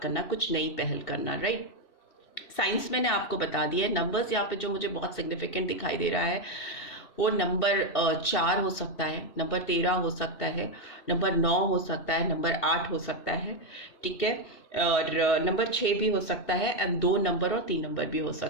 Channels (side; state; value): right; late; 2.7 ms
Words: करना, कुछ नई पहल करना, राइट। साइंस मैंने आपको बता दिया है। नंबर्स यहाँ पे जो मुझे बहुत सिग्निफिकेंट दिखाई दे रहा है वो नंबर 4 हो सकता है, नंबर 13 हो सकता है, नंबर 9 हो सकता है, नंबर 8 हो सकता है, ठीक है, और नंबर 6 भी हो सकता है, एंड 2 नंबर और 3 नंबर भी हो